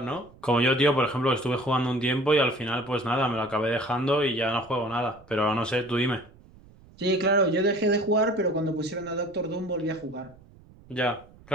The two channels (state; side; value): noise; right; rumble, 24 dB below the sound